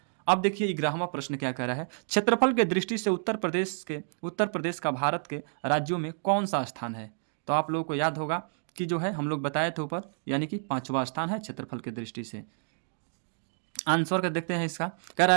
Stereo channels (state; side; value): silent; left; digital silence